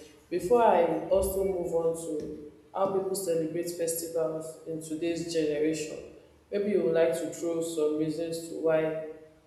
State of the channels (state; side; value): identical; both; correlation 1.00